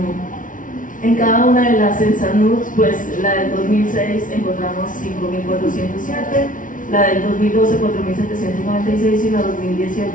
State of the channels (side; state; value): right; late; 0.38 ms